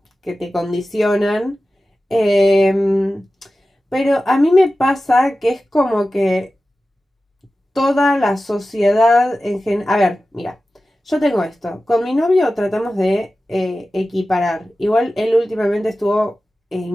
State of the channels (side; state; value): both; normal; correlation 0.94